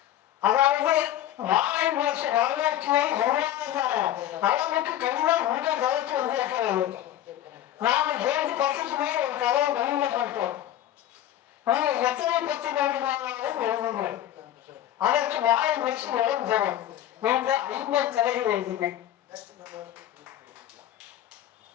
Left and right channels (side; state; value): right; quieter; 12.2 dB